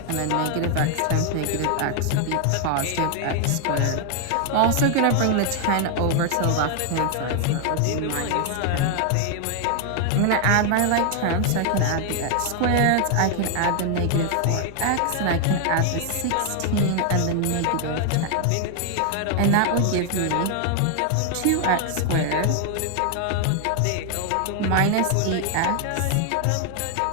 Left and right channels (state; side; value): different; both; correlation 0.00